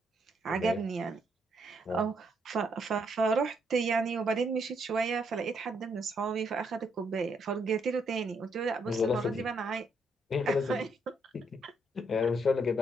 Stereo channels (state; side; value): normal; both; correlation 0.74